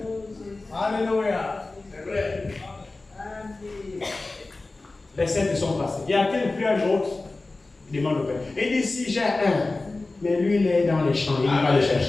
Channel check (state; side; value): quieter; right; 3.3 dB